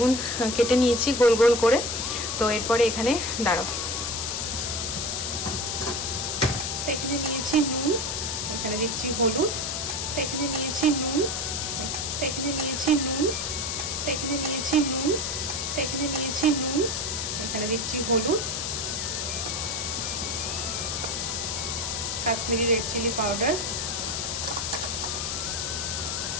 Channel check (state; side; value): noise; left; hiss, 2 dB below the sound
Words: কেটে নিয়েছি গোল গোল করে। তো এরপরে এখানে দাঁড়াও, এখানে নিয়েছি নুন, এখানে দিচ্ছি হলুদ, এখানে নিয়েছি নুন, এখানে নিয়েছি নুন, এখানে নিয়েছি নুন, এখানে নিয়েছি নুন, এখানে দিচ্ছি হলুদ, কাশ্মীরি রেড চিলি পাউডার,